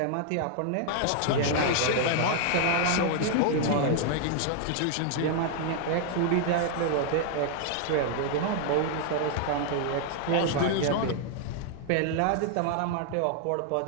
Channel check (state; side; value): different; both; correlation 0.00